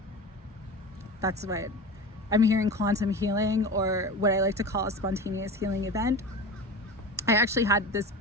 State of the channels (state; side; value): normal; both; correlation 0.31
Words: that's what I'm hearing, quantum healing, or what I like to call a spontaneous healing event. I actually had this